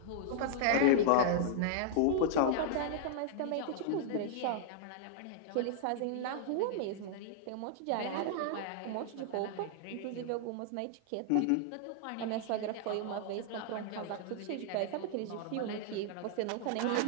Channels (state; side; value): different; both; correlation -0.01